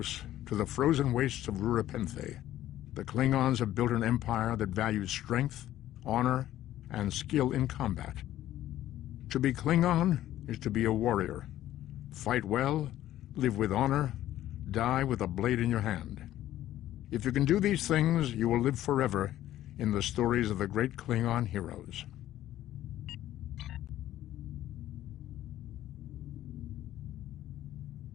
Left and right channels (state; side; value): quieter; right; 13.3 dB